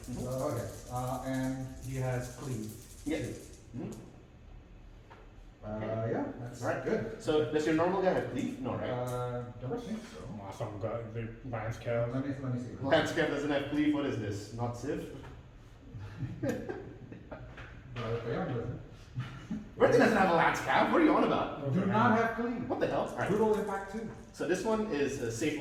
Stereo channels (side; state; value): both; identical; correlation 1.00